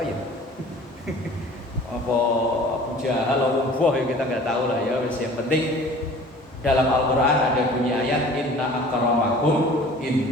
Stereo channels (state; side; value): normal; both; correlation 0.46